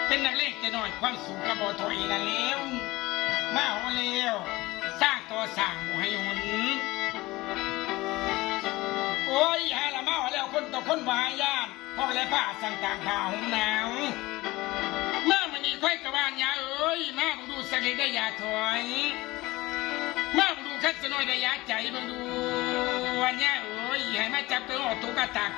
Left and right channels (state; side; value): quieter; right; 20.0 dB